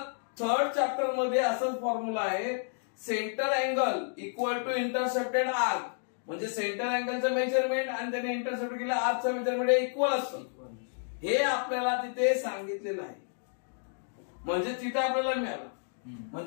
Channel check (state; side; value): silent; right; digital silence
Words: थर्ड चॅप्टर मध्ये असंच फॉर्म्युला आहे, centre angle equal to intercepted arc. म्हणजे सेंटर अँगलचं मेजरमेंट आणि त्याने इंटरसेप्ट केलं आर्कचं मेजरमेंट इक्वल असतं. हे आपल्याला तिथे सांगितलेलं आहे. म्हणजे तिथे आपल्याला मिळालं.